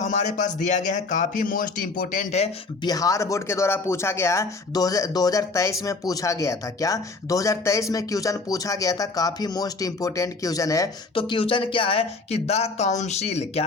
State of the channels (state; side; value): quieter; right; 3.8 dB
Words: पास दिया गया है काफ़ी मोस्ट इंपोर्टेंट है, बिहार बोर्ड के द्वारा पूछा गया है, 2023 में पूछा गया था। क्या 2023 में क्वेश्चन पूछा गया था, काफ़ी मोस्ट इंपोर्टेंट क्वेश्चन है। तो क्वेश्चन क्या है कि द काउंसिल,